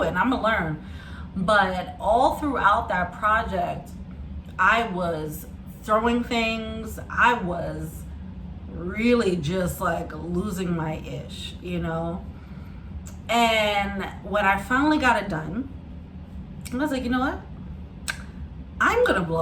it, and I'm gonna learn. But all throughout that project, I was throwing things. I was really just like losing my ish, you know? And when I finally got it done, I was like, you know what? I'm gonna blow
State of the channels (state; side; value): identical; both; correlation 1.00